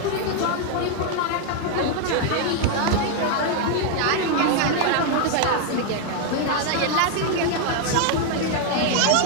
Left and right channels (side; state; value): both; different; correlation 0.00